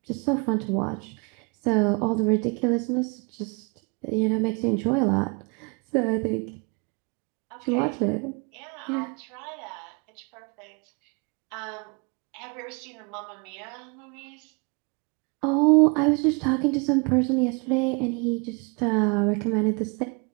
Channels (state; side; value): quieter; left; 32.8 dB